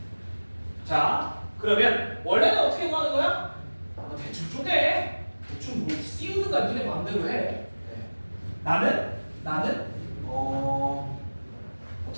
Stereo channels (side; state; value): both; inverted; correlation -1.00